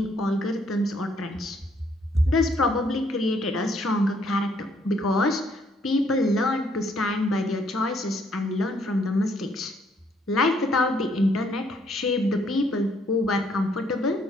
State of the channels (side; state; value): both; normal; correlation 0.68